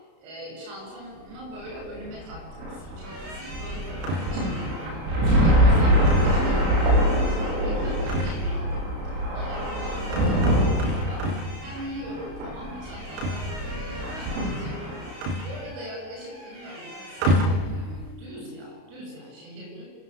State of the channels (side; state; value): left; late; 32 ms